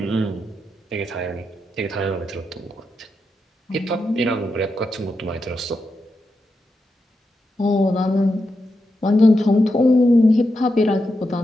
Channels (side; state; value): both; normal; correlation 0.86